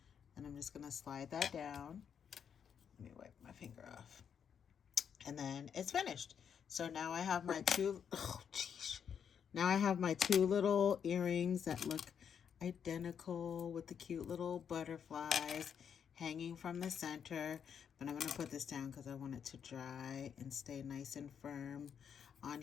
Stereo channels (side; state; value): right; quieter; 7.7 dB